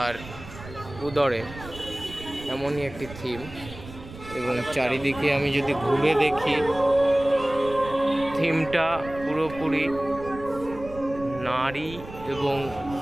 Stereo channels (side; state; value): right; noise; rumble, 15 dB below the sound